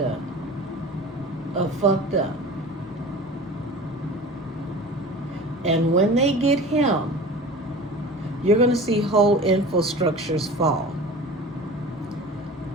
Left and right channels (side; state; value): both; normal; correlation 0.37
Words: of fucked up. And when they get him, you're going to see whole infrastructures fall.